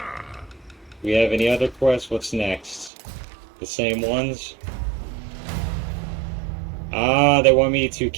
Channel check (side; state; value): left; drops out; at 2.9 s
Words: We have any other quests? What's next? The same ones? Ah, they want me to